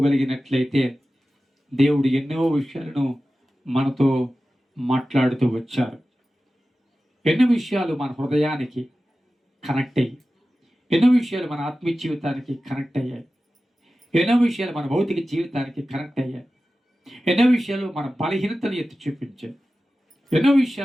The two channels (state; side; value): normal; both; correlation 0.95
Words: దేవుడు ఎన్నో విషయాలను మనతో మాట్లాడుతూ వచ్చారు. ఎన్నో విషయాలు మన హృదయానికి కనెక్ట్ అయ్యి, ఎన్నో విషయాలు మన ఆత్మీయ జీవితానికి కనెక్ట్ అయ్యాయి, ఎన్నో విషయాలు మన భౌతిక జీవితానికి కనెక్ట్ అయ్యాయి, ఎన్నో విషయాలు మన బలహీనతను ఎత్తి చూపించాయి, ఎన్నో